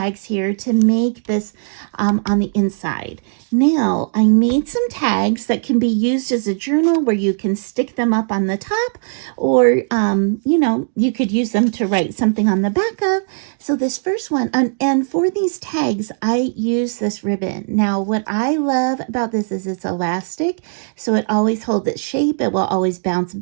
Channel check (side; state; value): left; silent; digital silence